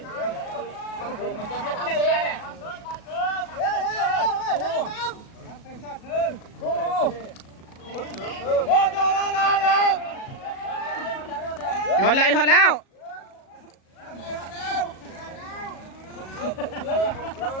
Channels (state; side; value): late; right; 37 ms